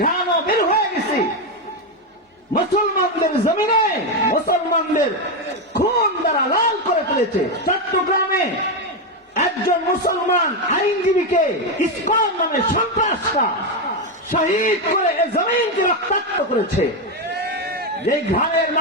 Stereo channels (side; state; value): both; normal; correlation 0.08